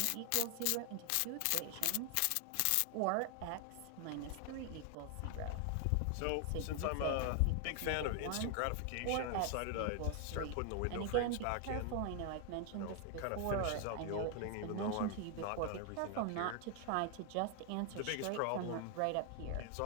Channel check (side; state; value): both; different; correlation 0.00